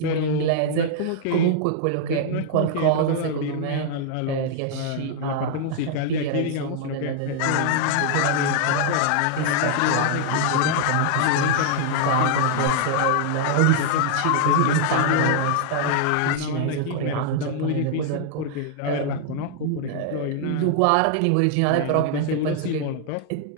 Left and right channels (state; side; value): different; both; correlation -0.01